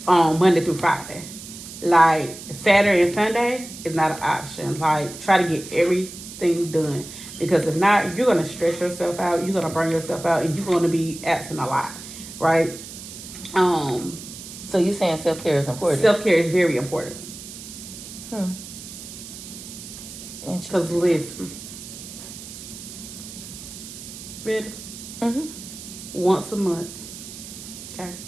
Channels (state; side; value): noise; right; hiss, 13 dB below the sound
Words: Monday through Friday. Like Saturday and Sunday is not an option. Like try to get everything done, because if not, you're gonna stress yourself out. You're gonna burn yourself out, and you're gonna be absent a lot, right? So you saying self-care is important? Self-care is very important. Because listen, ready? Once a month, okay,